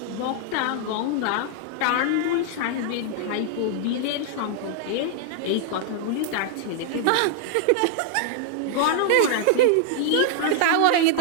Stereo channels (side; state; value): both; different; correlation -0.01